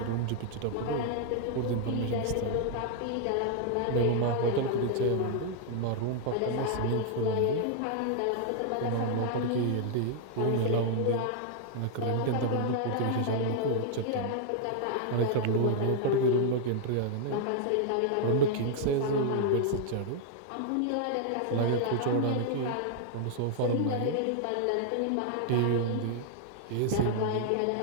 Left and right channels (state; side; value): different; both; correlation 0.00